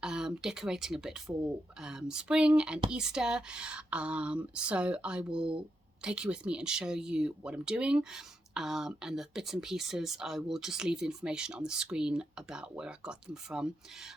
decorating a bit for spring and Easter. So I will take you with me and show you what I'm doing. And the bits and pieces, I will just leave the information on the screen about where I got them from.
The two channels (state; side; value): normal; both; correlation 0.84